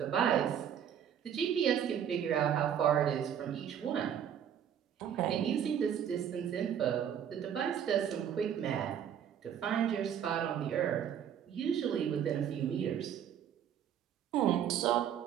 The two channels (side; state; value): left; quieter; 9.1 dB